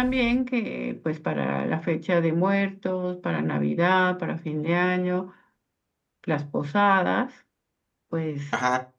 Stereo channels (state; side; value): identical; both; correlation 1.00